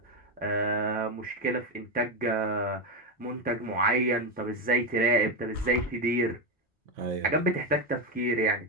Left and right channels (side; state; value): both; normal; correlation 0.10